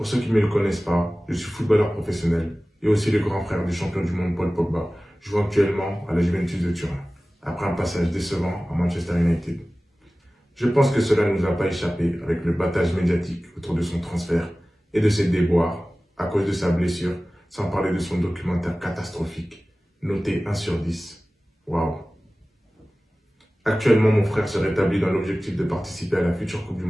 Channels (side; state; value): both; normal; correlation 0.97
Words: ceux qui ne me le connaissent pas, je suis footballeur professionnel et aussi le grand frère du champion du monde Paul Pogba, jouant actuellement à la Juventus de Turin, après un passage décevant à Manchester United. Je pense que cela ne nous a pas échappé avec le battage médiatique autour de son transfert et de ses déboires à cause de sa blessure, sans parler de son documentaire catastrophique, noté 1 sur 10. Waouh! Actuellement, mon frère se rétablit dans l'objectif de participer à la future Coupe du